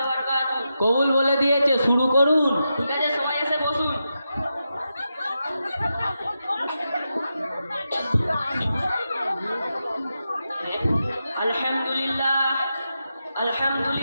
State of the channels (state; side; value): inverted; both; correlation -0.88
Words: বারাকাতুহু। কবুল বলে দিয়েছে, শুরু করুন। ঠিক আছে, সবাই এসে বসুন। আলহামদুলিল্লাহ